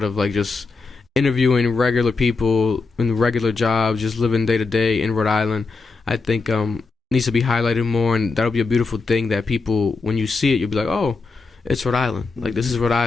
of, like just interviewing regular people in regular jobs, just living day to day in Rhode Island. I think needs to be highlighted more, and that'll be a beautiful thing that people, when you see it, you'll be like, oh, it's Rhode Island. Like, this is Rhode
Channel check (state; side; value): quieter; right; 4.2 dB